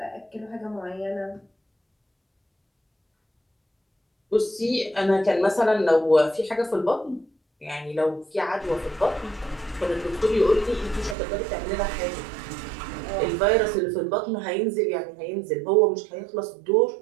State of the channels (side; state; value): left; drops out; at 11.2 s